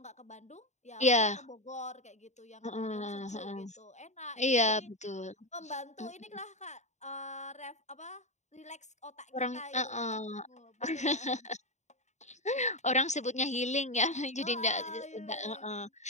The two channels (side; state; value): right; late; 0.34 ms